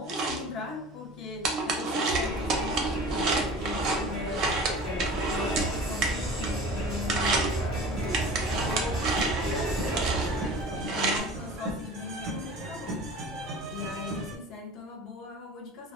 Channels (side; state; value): both; normal; correlation 0.40